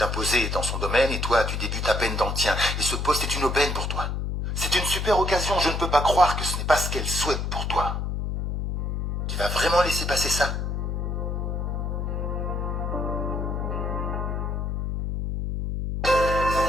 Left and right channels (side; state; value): left; noise; hum, 1 dB below the sound